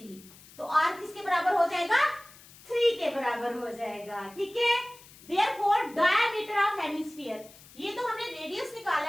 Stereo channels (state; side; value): noise; left; hiss, 22 dB below the sound